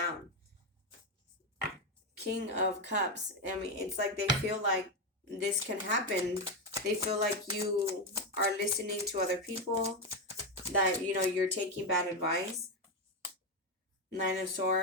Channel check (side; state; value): both; normal; correlation 0.09